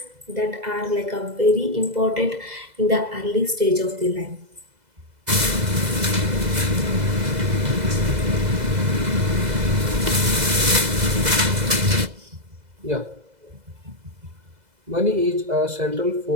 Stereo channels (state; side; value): late; left; 2.0 ms